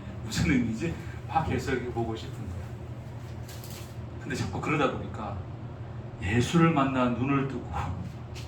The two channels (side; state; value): both; identical; correlation 1.00